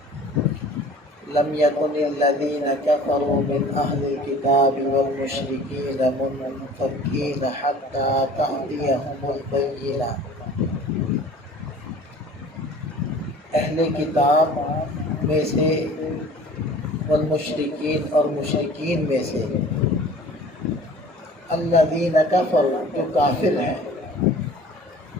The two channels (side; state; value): both; normal; correlation 0.46